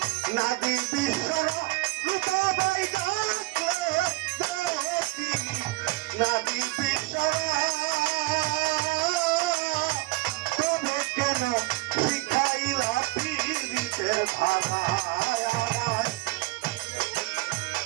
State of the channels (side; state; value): left; quieter; 21.0 dB